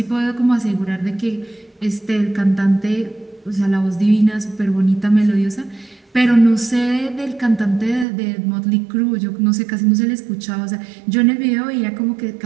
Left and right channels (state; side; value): drops out; left; at 8.1 s